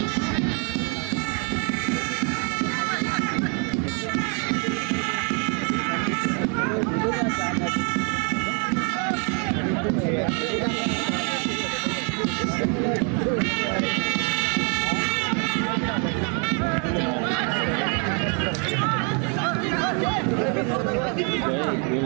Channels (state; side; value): quieter; left; 37.9 dB